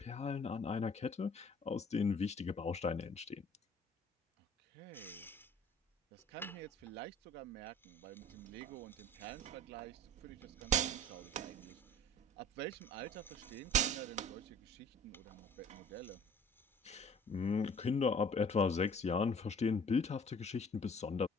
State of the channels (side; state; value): both; normal; correlation 0.49